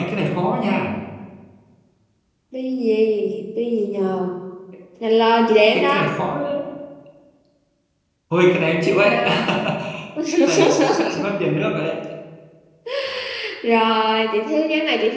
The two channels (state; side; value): identical; both; correlation 1.00